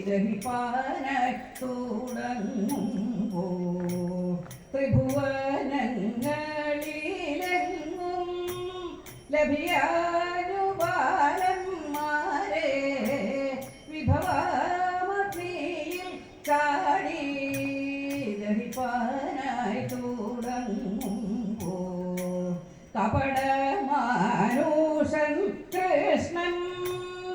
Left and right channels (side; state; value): both; identical; correlation 1.00